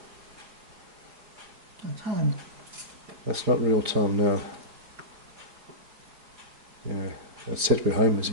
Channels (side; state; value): left; late; 5.0 ms